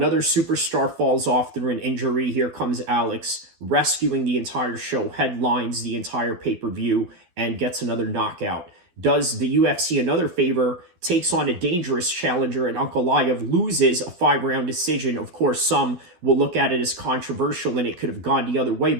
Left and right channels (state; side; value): late; left; 12 ms